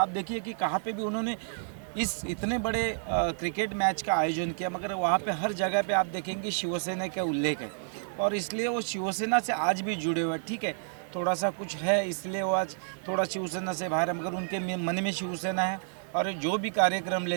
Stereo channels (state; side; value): silent; left; digital silence